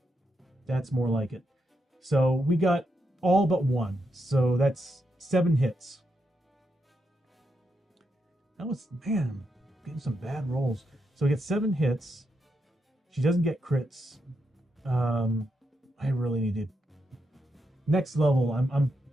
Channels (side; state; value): both; normal; correlation 0.83